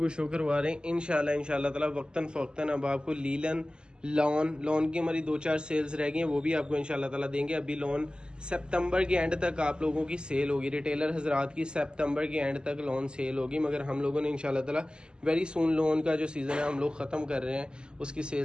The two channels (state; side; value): late; left; 0.048 ms